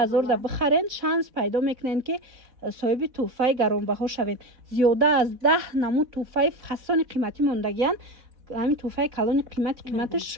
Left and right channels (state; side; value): late; left; 4.0 ms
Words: دا بخرین شانس پیدا میکنین که صاحب توفه گرانبها شوین. زیاده از 10 نمود توفه فسان قیمتی موندگیان. همین توفه کلون قیمتش